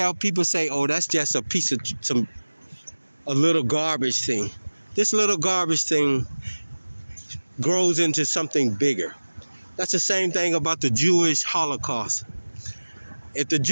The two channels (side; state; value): both; inverted; correlation -1.00